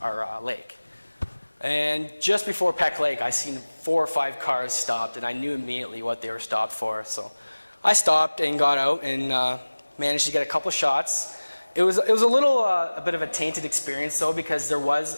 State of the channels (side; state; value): both; inverted; correlation -1.00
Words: lake. And just before Peck Lake, I seen 4 or 5 cars stopped, and I knew immediately what they were stopped for. So I stopped and got out and managed to get a couple shots. It was a bit of a tainted experience though, because there